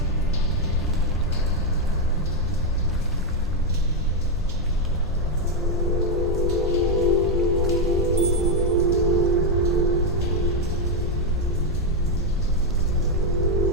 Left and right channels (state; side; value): normal; both; correlation 0.04